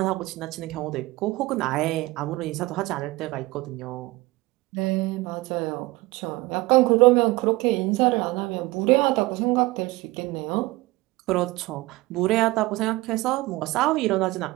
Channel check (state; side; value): quieter; left; 20.3 dB